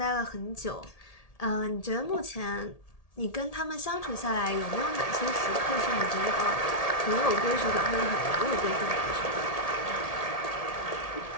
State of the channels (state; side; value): late; right; 1.8 ms